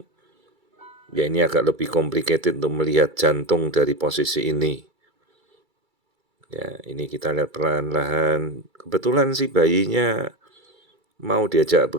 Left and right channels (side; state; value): left; late; 2.3 ms